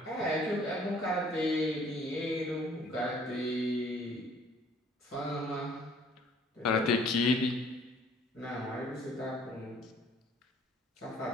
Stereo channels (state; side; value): normal; both; correlation 0.57